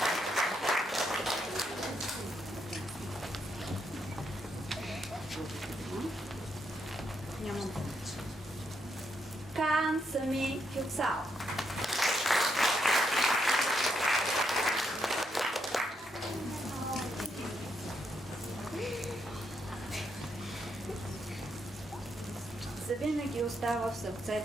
Кан Сами Кюпсал. Завинаги остава в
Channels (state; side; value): normal; both; correlation 0.78